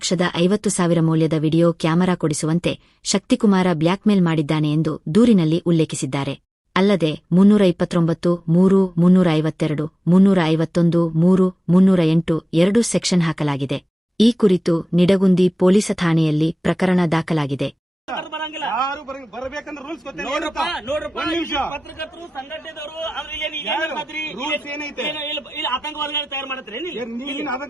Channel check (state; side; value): normal; both; correlation 0.97